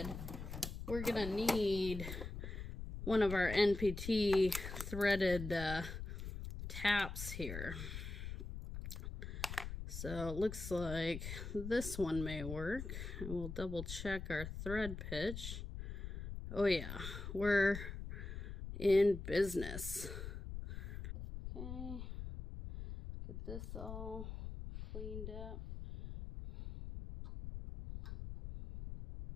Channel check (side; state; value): left; noise; rumble, 7 dB below the sound